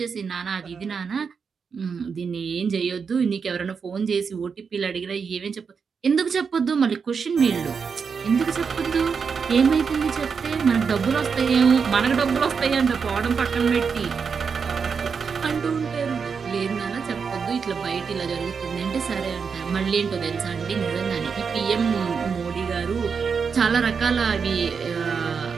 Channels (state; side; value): quieter; left; 5.9 dB